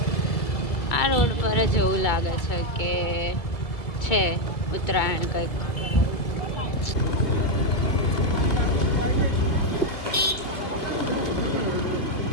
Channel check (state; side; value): late; right; 2.2 ms